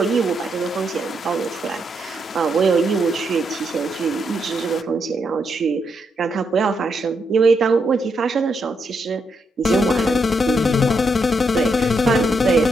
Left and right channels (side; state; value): both; normal; correlation 0.80